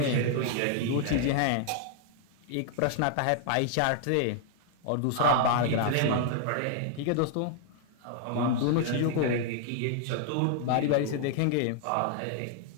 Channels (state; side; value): different; both; correlation 0.00